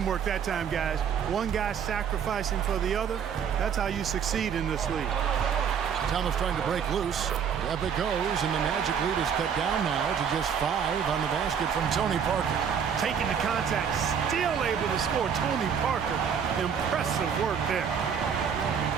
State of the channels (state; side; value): quieter; left; 7.4 dB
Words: that time, guys. One guy sacrificing for the other. That's how you succeed in this league. Thomas trying to break loose. Up it goes, and the Magic lead is cut down now to just 5 on the basket from Tony Parker. Taking the contact, still able to score. Tony Parker, impressive work there.